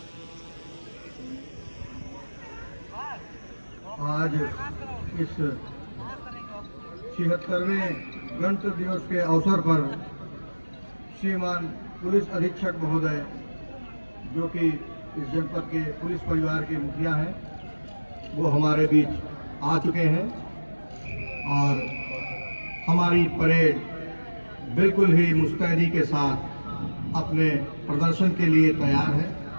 आज इस 76वें गणतंत्र दिवस के अवसर पर श्रीमान पुलिस अधीक्षक महोदय, जो कि इस जनपद के पुलिस परिवार के मुखिया हैं, वो हमारे बीच आ चुके हैं और हमारी परेड बिल्कुल ही मुस्तैदी के साथ अपने प्रदर्शन के लिए तैयार है,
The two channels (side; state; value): both; inverted; correlation -1.00